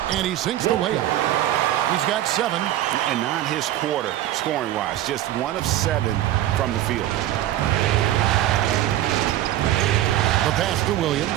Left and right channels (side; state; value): left; quieter; 13.3 dB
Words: and he sinks the layup. He's got 7. And not his quarter, scoring-wise. Just 1 of 7 from the field. The pass to